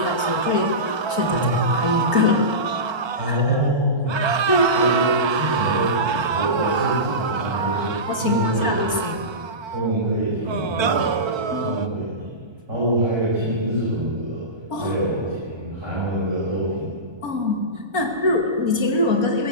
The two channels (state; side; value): late; left; 1.3 ms